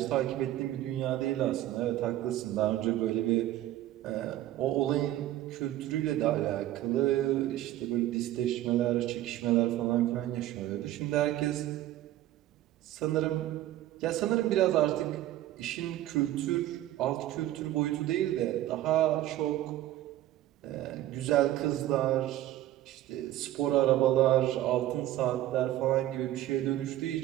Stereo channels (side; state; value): left; quieter; 14.1 dB